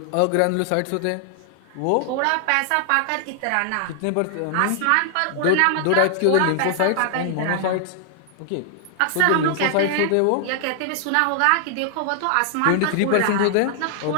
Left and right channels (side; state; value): both; different; correlation 0.00